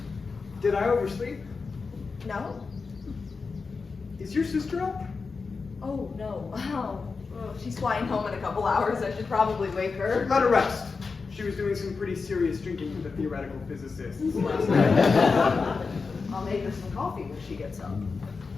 Did I oversleep? No? Is your sister up? Oh, no. Oh, she's flying home in a couple hours. I should probably wake her. Let her rest. She was doing some pretty serious drinking with the theoretical physicists last night. I'll make her some coffee when she gets up.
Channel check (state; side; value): quieter; right; 4.6 dB